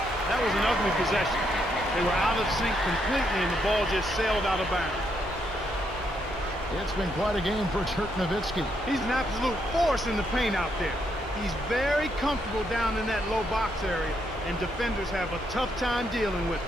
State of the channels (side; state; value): both; normal; correlation 0.77